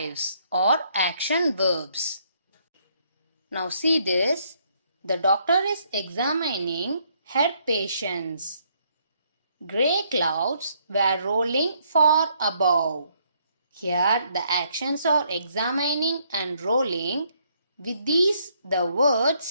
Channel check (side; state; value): both; inverted; correlation -0.70